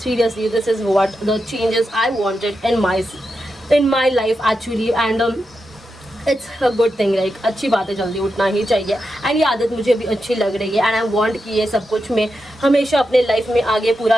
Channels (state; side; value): normal; both; correlation 0.88